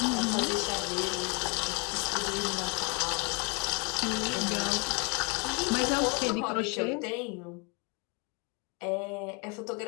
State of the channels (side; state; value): right; quieter; 32.9 dB